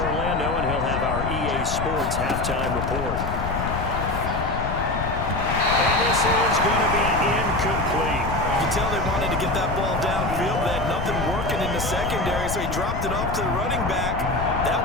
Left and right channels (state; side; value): noise; left; rumble, 4 dB below the sound